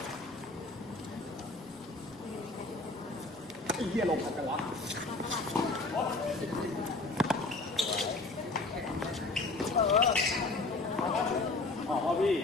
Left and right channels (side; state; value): right; quieter; 3.3 dB